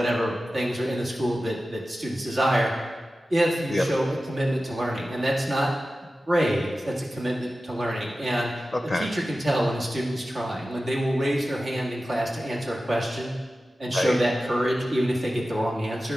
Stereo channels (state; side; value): normal; both; correlation 0.95